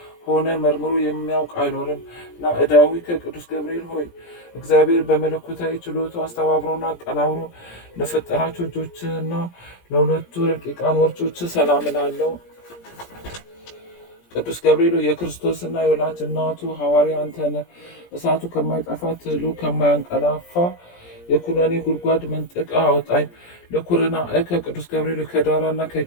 መርምሮ የሚያውቅ አይኖርም። ናዕዳዊ ከቅዱስ ገብርኤል ሆይ እግዚአብሔር በመለኮታዊ ችሎቱ አስተባብሮና አቀናብሮ ለፈጠራቸው እጆችና ለሁለቱ ረቂቃን ወርቾች ሰላም እላለሁ። ቅዱስ ገብርኤል የክርስቶስና የወላጅ እናቱ ሐዋርያ አንተ ነህ። እሳቱ ከማይጠፋ ትሉ ከማያንቀላፋ የኩነኔ ጉድጓድ መንጠቃ አውጣኝ። ለኩርና ከቅዱስ ገብርኤል ከዳራና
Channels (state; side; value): late; right; 17 ms